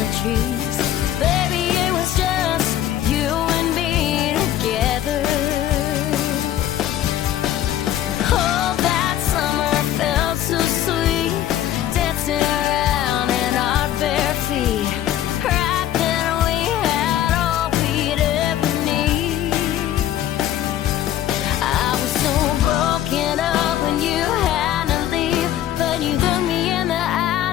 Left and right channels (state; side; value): quieter; right; 12.0 dB